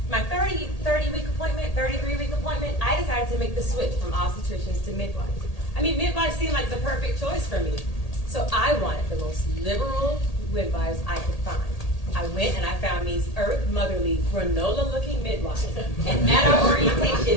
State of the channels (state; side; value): late; right; 1.8 ms